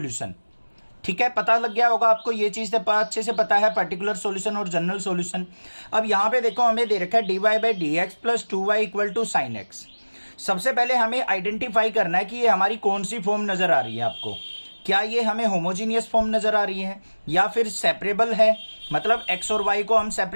ठीक है, पता लग गया होगा आपको, ये चीज अच्छे से पता है, पर्टिकुलर सॉल्यूशन और जनरल सॉल्यूशन। अब यहाँ पे देखो, हमें दे रखा है dy/dx + 2y = sin x। सबसे पहले हमें आइडेंटिफाई करना है कि ये हमारी कौन सी फॉर्म नजर आ रही है आपको। क्या ये हमें होमोजीनियस फॉर्म नजर आ रही है, या फिर सेपरेबल है, मतलब x और y को हम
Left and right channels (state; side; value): inverted; both; correlation -1.00